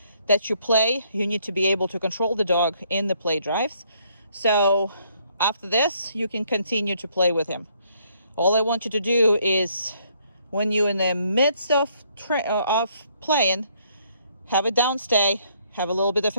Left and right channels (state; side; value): inverted; both; correlation -0.68